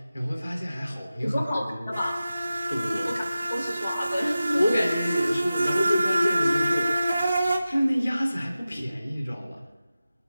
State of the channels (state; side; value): inverted; both; correlation -0.94